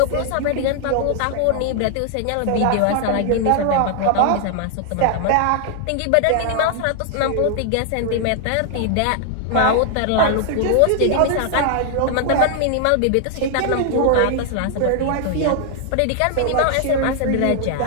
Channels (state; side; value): different; both; correlation 0.00